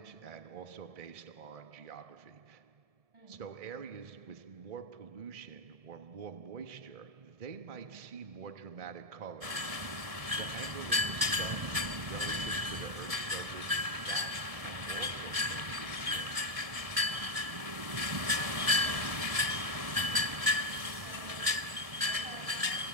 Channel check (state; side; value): late; left; 1.7 ms